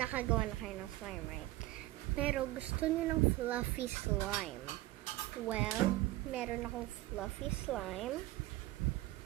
na kayo ng slime, right? Pero gusto nyo ng fluffy slime. Well, meron akong fluffy slime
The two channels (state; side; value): quieter; left; 17.6 dB